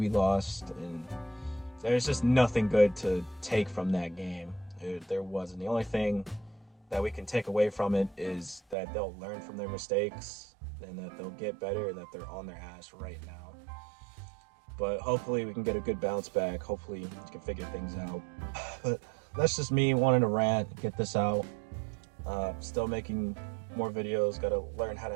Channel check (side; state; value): left; drops out; at 8.8 s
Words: lost, and there's just nothing good to take from that game. There wasn't. The only thing that we can take away from it is that they'll learn from their mistakes and that they'll get better and that they're on their ass right now. But hopefully we can get a good bounce back. Hopefully we can figure things out. But that's just me wanting to rant, get this out. Still making more videos. Got to learn how